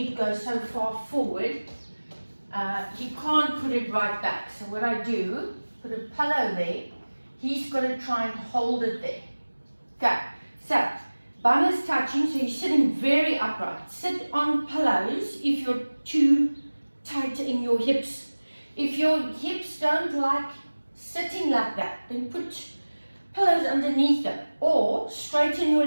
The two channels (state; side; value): inverted; both; correlation -1.00